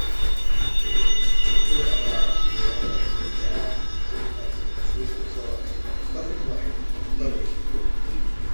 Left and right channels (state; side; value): inverted; both; correlation -1.00